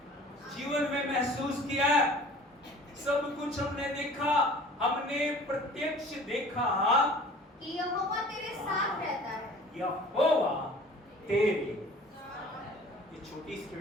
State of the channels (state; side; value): normal; both; correlation 0.46